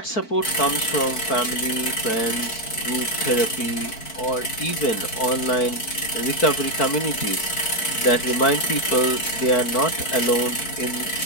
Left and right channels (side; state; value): right; late; 4.5 ms